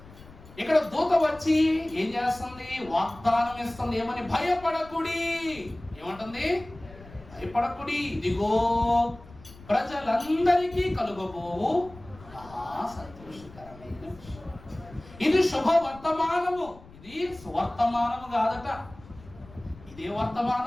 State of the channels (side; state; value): left; noise; rumble, 20 dB below the sound